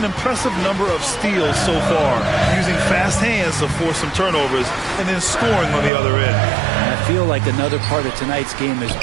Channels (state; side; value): drops out; left; at 5.9 s